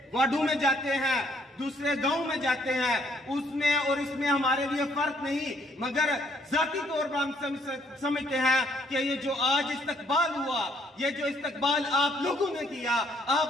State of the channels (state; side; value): normal; both; correlation 0.68